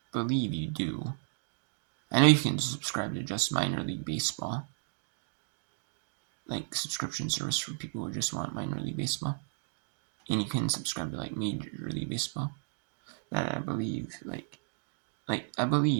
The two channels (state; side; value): silent; left; 55 dB below the other